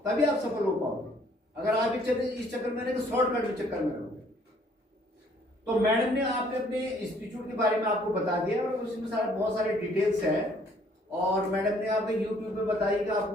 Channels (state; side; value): normal; both; correlation 0.61